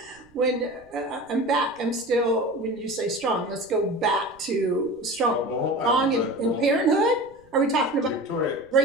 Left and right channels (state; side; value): noise; right; rumble, 29 dB below the sound